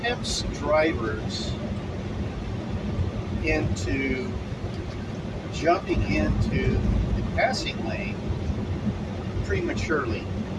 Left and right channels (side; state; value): both; identical; correlation 1.00